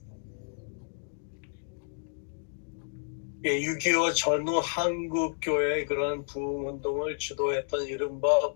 6.25 전후 한국교회의 그런 부흥운동을 주도했던 이른바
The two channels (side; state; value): right; silent; 57 dB below the other